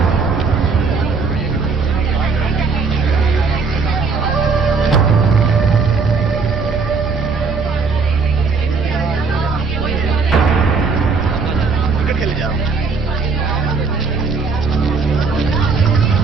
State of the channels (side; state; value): left; quieter; 4.6 dB